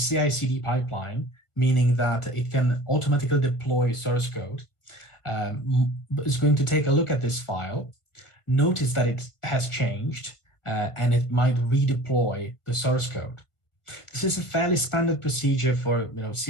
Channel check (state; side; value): late; right; 1.5 ms